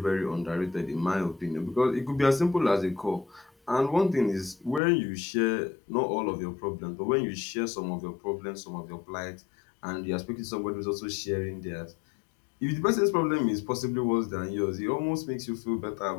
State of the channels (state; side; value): drops out; right; at 4.8 s